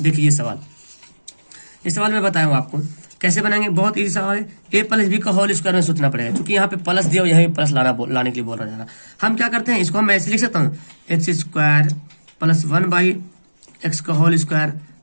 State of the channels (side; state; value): both; inverted; correlation -1.00